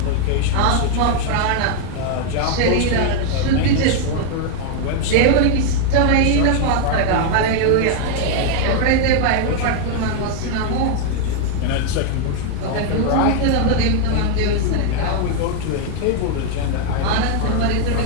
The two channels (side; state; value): both; different; correlation 0.00